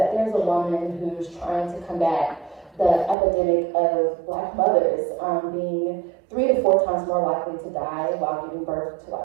there's a woman who's trying to combat the epidemic of Black mothers being 3 to 4 times more likely to die while giving birth to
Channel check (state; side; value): drops out; left; at 3.2 s